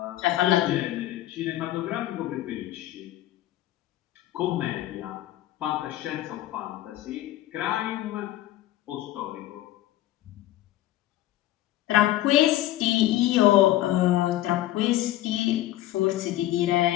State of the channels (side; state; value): right; quieter; 14.8 dB